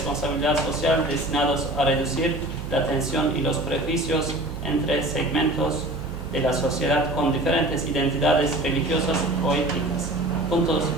social destinados a reducir la tensión y los prejuicios entre segmentos de la sociedad con diferentes identidades religiosas o étnicas, puntos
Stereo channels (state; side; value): noise; right; hum, 9 dB below the sound